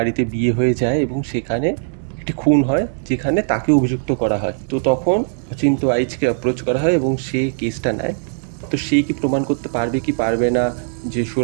বিয়ে হয়ে যায় এবং সেখানে একটি খুন হয়, যেখানে তাকে অভিযুক্ত করা হয়। তো তখন অচিন্ত্য আইচকে অ্যাপ্রোচ করা হয় এবং সে কেসটা নেয়। তো সে কি প্রমাণ করতে পারবে কি পারবে না যে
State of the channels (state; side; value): silent; left; 66 dB below the other